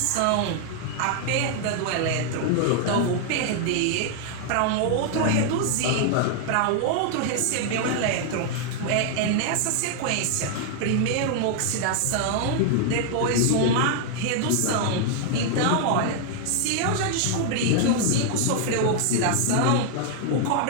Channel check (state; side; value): different; both; correlation 0.00